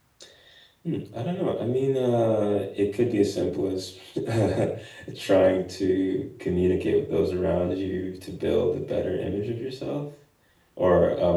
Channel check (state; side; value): identical; both; correlation 1.00